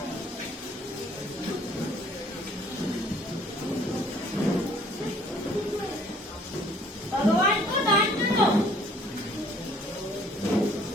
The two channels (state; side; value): normal; both; correlation 0.58